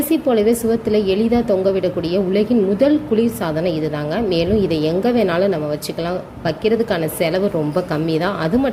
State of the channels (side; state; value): both; identical; correlation 1.00